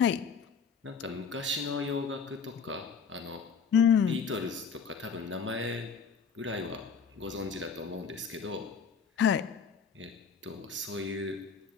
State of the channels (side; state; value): right; quieter; 6.2 dB